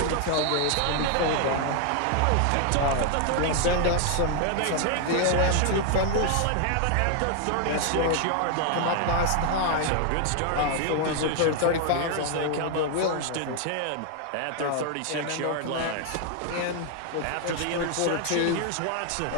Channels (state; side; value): different; both; correlation 0.00